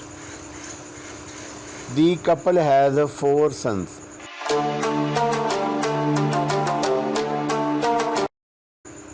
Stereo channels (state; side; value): identical; both; correlation 1.00